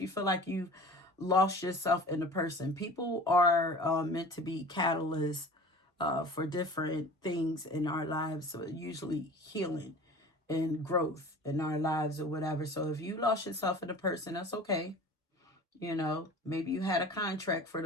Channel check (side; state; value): both; normal; correlation 0.40